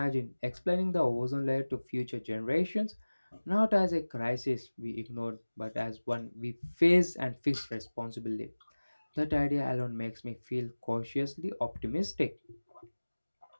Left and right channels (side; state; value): both; inverted; correlation -1.00